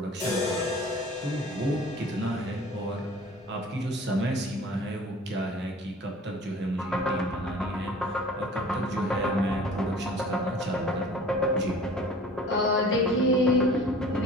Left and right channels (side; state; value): both; normal; correlation 0.46